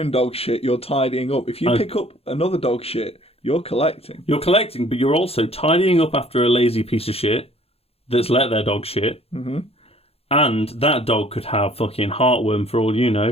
dog shit, you're tidying up. If you pick up another dog shit, you're collecting. You're collecting, but you're also tidying up after a lazy piece of shit that's let their dog shit. Mm-hmm. And that dog could have fucking heartworm for all you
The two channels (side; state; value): right; late; 0.29 ms